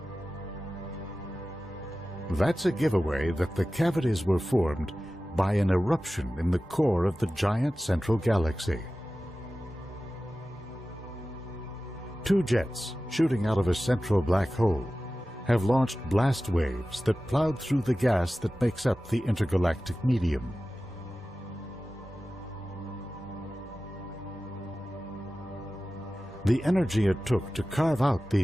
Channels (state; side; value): normal; both; correlation 0.95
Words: That's a giveaway that the cavities were formed by an eruption in the core of the giant central galaxy. Two jets shooting out of a central black hole have launched blast waves that plowed through the gas that makes up the intergalactic medium. The energy it took to carve out